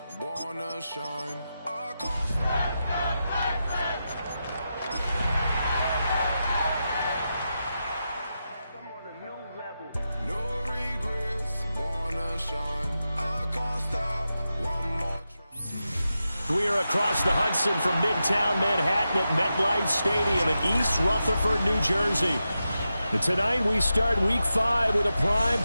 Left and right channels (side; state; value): both; inverted; correlation -0.89